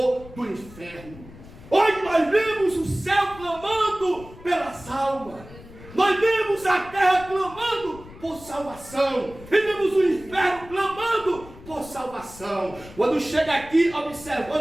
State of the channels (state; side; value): noise; left; rumble, 18 dB below the sound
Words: do inferno. Hoje nós vemos o céu clamando pelas almas, nós vemos a terra clamando por salvação, e vemos o inferno clamando por salvação. Quando chega aqui